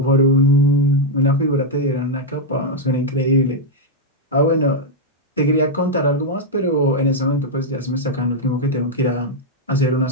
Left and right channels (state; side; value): normal; both; correlation -0.02